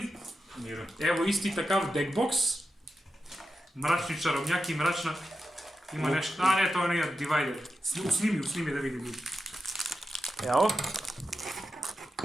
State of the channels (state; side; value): normal; both; correlation 0.89